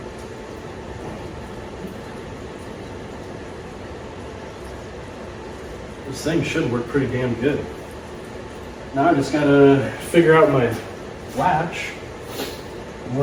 this thing should work pretty damn good. Now I just gotta figure out my latch, and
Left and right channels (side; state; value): both; identical; correlation 1.00